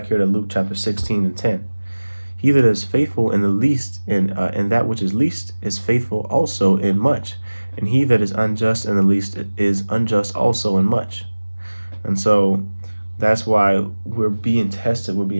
here to Luke chapter 16 and 10. He that is faithful in the least, in that which is least, is faithful also in much. And he that is unjust in the least is unjust also in much. And so that's why we're being tested, we're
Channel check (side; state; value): both; inverted; correlation -1.00